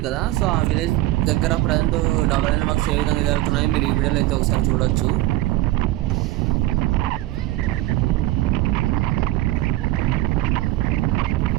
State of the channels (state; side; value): quieter; left; 16.6 dB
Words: కదా. సో ఆ విలేజ్ దగ్గర ప్రజెంట్ డబల్ లైన్ వర్క్స్ ఏ విధంగా జరుగుతున్నాయో మీరు ఈ వీడియోలో అయితే ఒకసారి చూడొచ్చు.